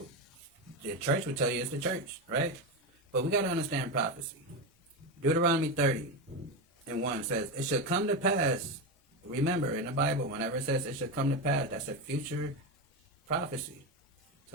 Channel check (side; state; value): both; normal; correlation 0.15